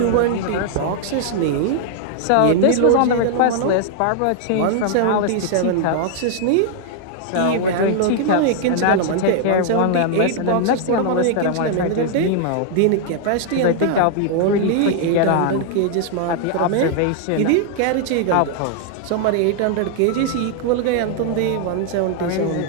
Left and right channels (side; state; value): both; different; correlation -0.01